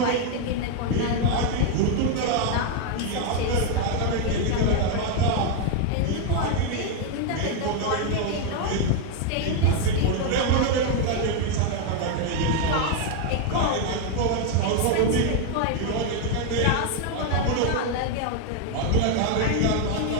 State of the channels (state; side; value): different; both; correlation 0.01